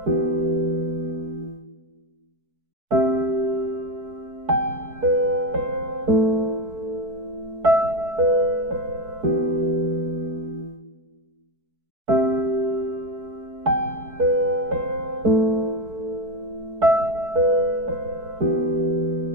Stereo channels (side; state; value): left; late; 4.6 ms